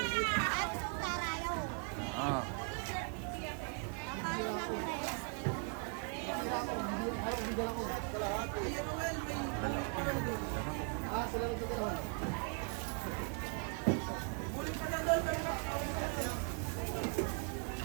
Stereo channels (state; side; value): quieter; left; 40.0 dB